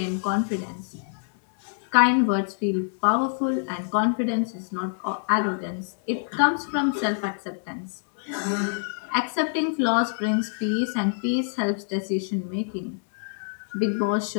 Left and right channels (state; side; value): silent; right; digital silence